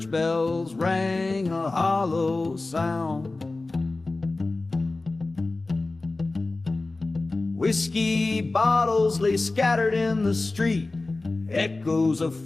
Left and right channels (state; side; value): quieter; right; 3.2 dB